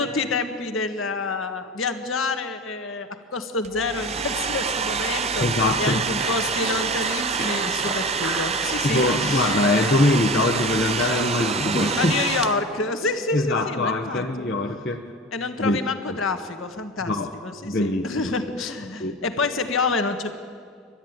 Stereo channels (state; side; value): normal; both; correlation 0.32